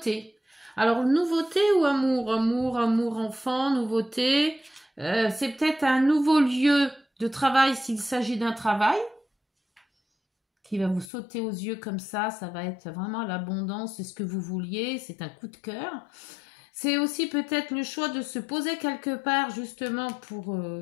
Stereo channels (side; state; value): right; drops out; at 11.1 s